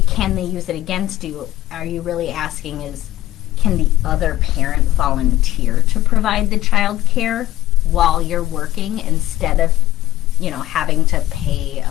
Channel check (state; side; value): quieter; right; 15.0 dB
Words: can they use it against you, are you really asking can the other parent volunteer to provide the child care while you're working instead of having to pay